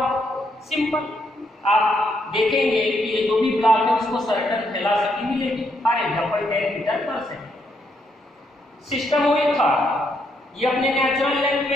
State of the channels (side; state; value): both; normal; correlation 0.76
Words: सिंपल, आप देखेंगे कि ये जो भी ब्लॉक है उसको सर्टन वेलोसिटी मिलेगी, फॉर एग्जांपल 10 मीटर पर सेकंड। सिस्टम वही था, ये अपने नेचुरल लेंथ